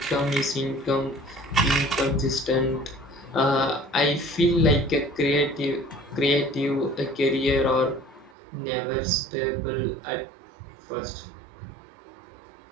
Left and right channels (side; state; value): left; drops out; at 8.3 s